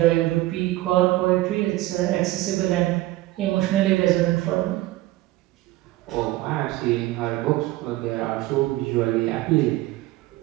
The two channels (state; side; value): quieter; left; 17.6 dB